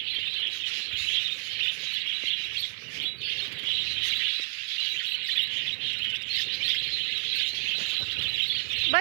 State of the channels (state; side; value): silent; left; digital silence